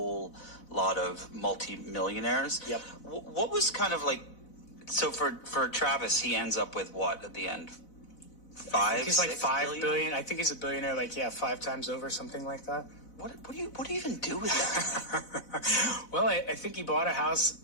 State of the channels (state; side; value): late; right; 4.0 ms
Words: lot of multi-millionaires. Yep. What was kind of so for Travis, he ends up with what at the end? He's like 5 billion. I think he's a billionaire, 5 times over, something like that. What do you even do with that? Well, I think he bought a